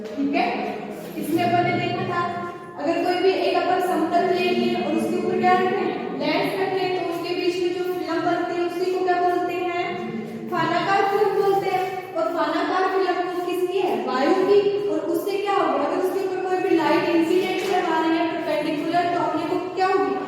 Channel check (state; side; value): identical; both; correlation 1.00